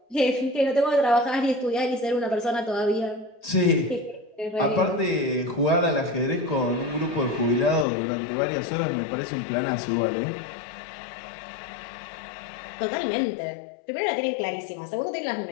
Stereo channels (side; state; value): right; drops out; at 7.9 s